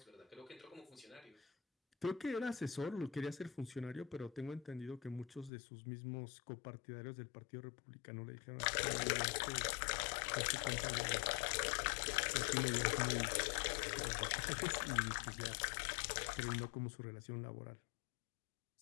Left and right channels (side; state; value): right; drops out; at 5.5 s